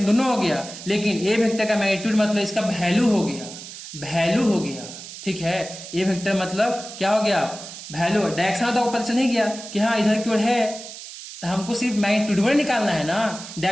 दोनों हो गया, लेकिन ए वेक्टर का मैग्नीट्यूड मतलब इसका वैल्यू हो गया, वैल्यू हो गया, ठीक है। ए वेक्टर मतलब क्या हो गया, वैल्यू। डायरेक्शन तो आपको पता चल नहीं गया कि हाँ इधर की ओर है, तो हमको सिर्फ मैग्नीट्यूड निकालना है ना।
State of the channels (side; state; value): right; noise; hiss, 13 dB below the sound